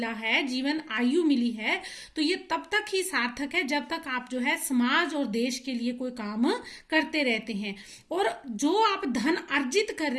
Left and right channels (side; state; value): both; identical; correlation 1.00